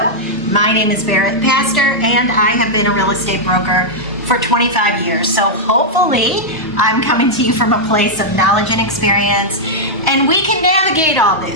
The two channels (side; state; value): both; normal; correlation -0.05